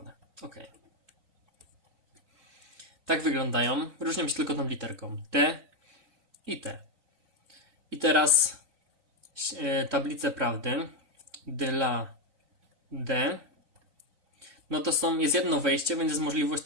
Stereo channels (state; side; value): late; left; 3.9 ms